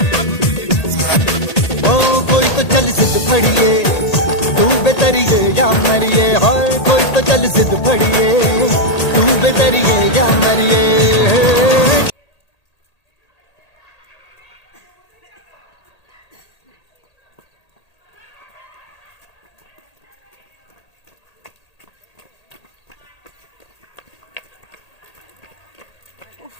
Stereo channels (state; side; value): late; right; 1.8 ms